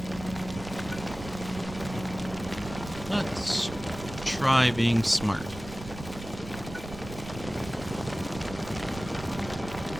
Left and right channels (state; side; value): noise; right; rumble, 12 dB below the sound